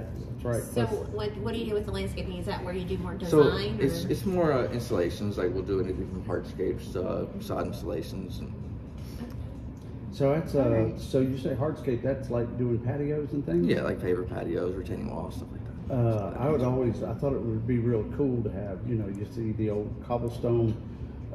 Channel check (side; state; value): both; identical; correlation 1.00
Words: That's right. So what do you do with the landscaping? Is that where you do more So design? it's more installations. Like we'll do anything from hardscapes to sod installations. And So that's so you say hardscape? That's like doing patios and things. yeah, like paver patios, retaining walls, stuff like that. I thought it would be real cool to have, you see the old cobblestone